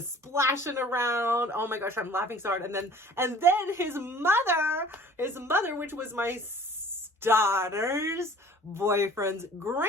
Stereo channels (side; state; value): both; normal; correlation 0.48